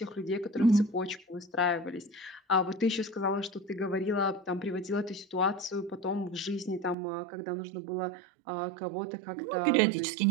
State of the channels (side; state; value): left; drops out; at 7.0 s